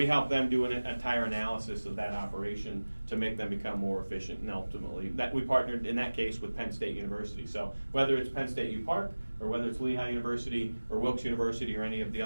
help them do an entire analysis of that operation to make them become more efficient, and ultimately, we partnered in that case with Penn State University. So whether it's Penn State U Park, or whether it's Lehigh University, or Wilkes University, or any of the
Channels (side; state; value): both; inverted; correlation -1.00